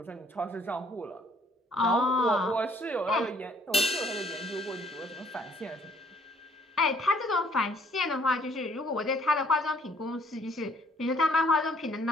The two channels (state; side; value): normal; both; correlation 0.61